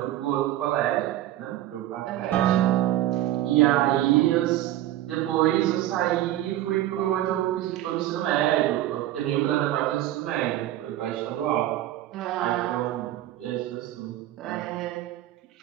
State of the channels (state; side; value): quieter; left; 13.8 dB